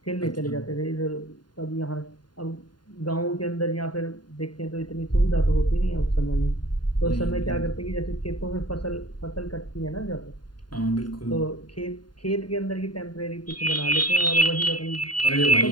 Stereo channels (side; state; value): right; late; 0.70 ms